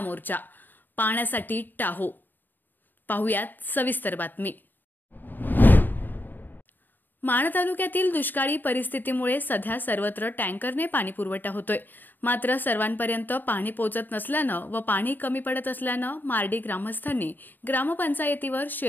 पाण्यासाठी टाहो। पाहुयात सविस्तर बातमी। माण तालुक्यातील दुष्काळी परिस्थितीमुळे सध्या सर्वत्र टँकरने पाणी पुरवठा होतोय। मात्र सर्वांपर्यंत पाणी पोहोचत नसल्यानं व पाणी कमी पडत असल्यानं मार्डी ग्रामस्थांनी ग्रामपंचायतीवर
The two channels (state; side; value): late; right; 0.090 ms